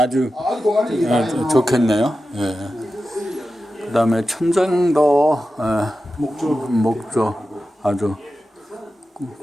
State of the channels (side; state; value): both; normal; correlation 0.92